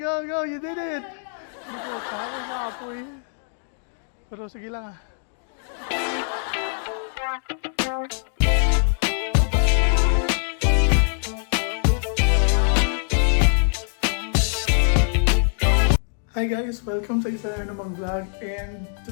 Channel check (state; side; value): silent; right; 63 dB below the other